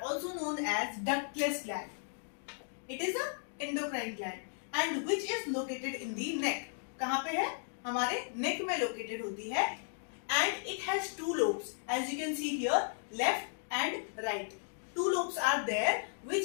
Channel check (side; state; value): right; silent; digital silence